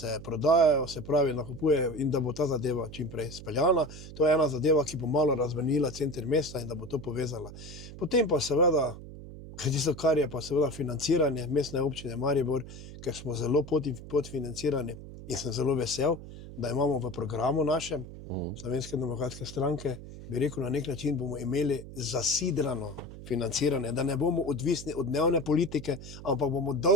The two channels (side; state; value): right; noise; hum, 13 dB below the sound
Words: prodajajo, se pravi, nakupuje in da bo ta zadeva čim prej speljana. To je ena zadeva, ki bo malo razvenila center mesta in da bo to povezala. Potem pa seveda, tisto, kar je pa seveda financiranje mestne občine Maribor, ker smo zelo podfinancirani in sem zelo vesel, da imamo v programu našem Slovenske demokratske stranke, bi rekel, na nek način bomo imeli zasidrano financiranje, da ne bomo odvisni od dnevne politike, ampak bomo